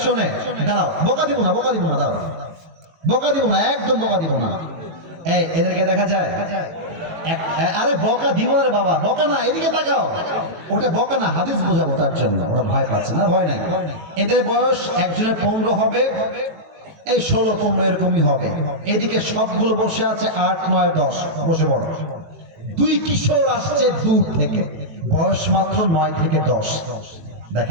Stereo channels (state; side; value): late; left; 18 ms